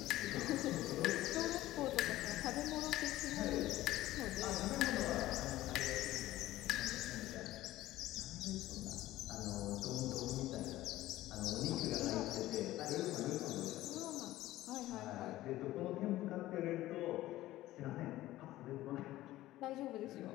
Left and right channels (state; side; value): quieter; right; 15.8 dB